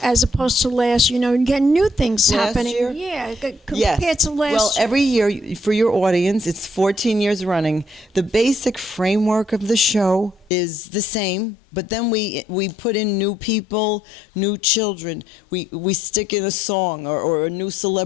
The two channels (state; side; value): drops out; right; at 10.5 s